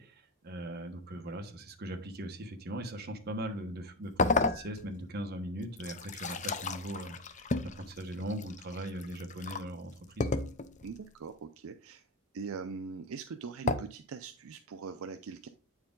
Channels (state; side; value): normal; both; correlation 0.17